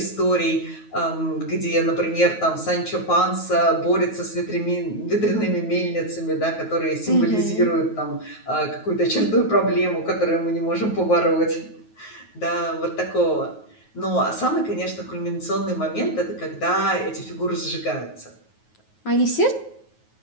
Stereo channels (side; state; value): right; late; 9.4 ms